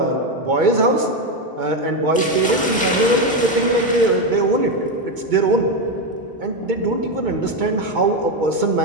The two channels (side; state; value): both; normal; correlation 0.10